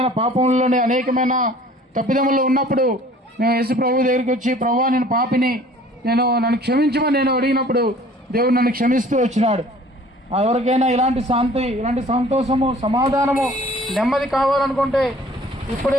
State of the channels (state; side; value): normal; both; correlation 0.51